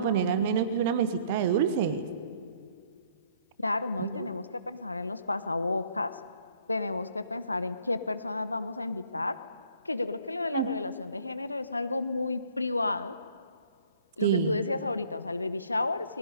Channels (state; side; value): inverted; both; correlation -0.60